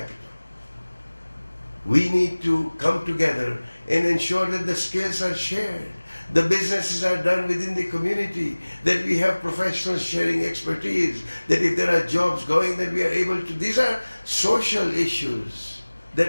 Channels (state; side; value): inverted; both; correlation -1.00